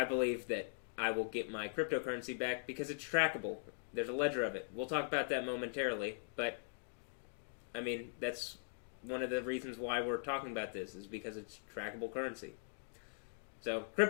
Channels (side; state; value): right; silent; digital silence